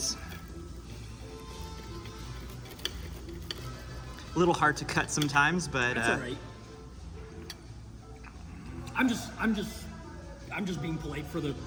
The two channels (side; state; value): both; identical; correlation 1.00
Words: A little hard to cut sometimes, but That's all right. I'm just being polite for the